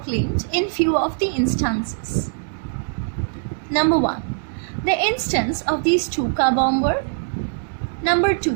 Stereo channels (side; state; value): left; silent; digital silence